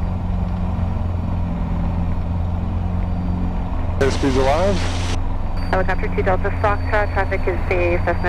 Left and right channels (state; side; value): identical; both; correlation 1.00